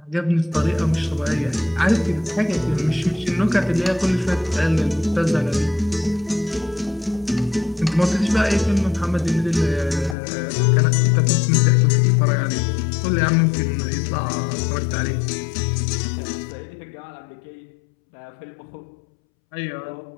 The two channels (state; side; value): drops out; right; at 10.2 s